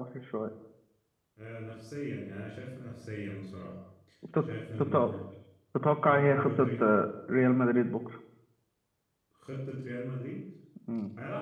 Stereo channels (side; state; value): both; identical; correlation 1.00